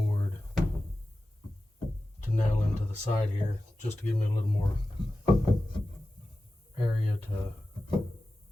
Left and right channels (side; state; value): both; normal; correlation 0.94